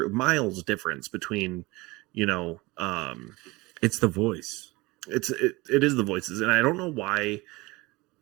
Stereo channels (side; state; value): left; quieter; 22.5 dB